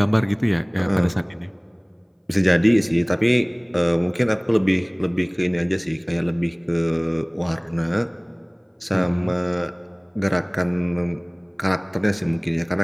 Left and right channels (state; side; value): identical; both; correlation 1.00